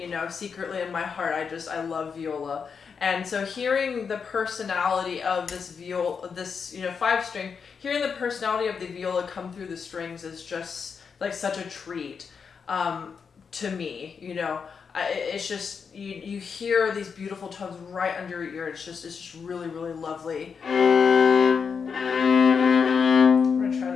secretly in my heart, I love viola. And so hearing the personality of this viola, this 5-string, hearing the personality of the viola come through the strings is just like such a treat to me. It's just you hear these beautiful tones right under your ear. It's just really, really lovely. I'm gonna try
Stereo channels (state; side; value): quieter; right; 6.0 dB